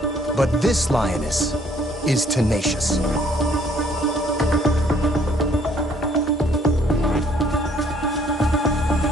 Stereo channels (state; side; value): normal; both; correlation 0.62